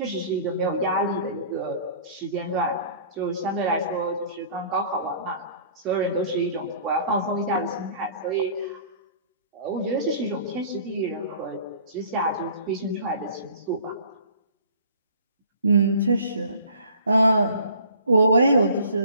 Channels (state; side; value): inverted; both; correlation -0.50